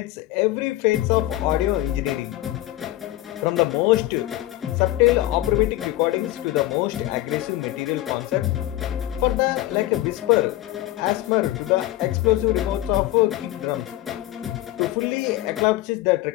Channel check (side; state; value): right; quieter; 15.8 dB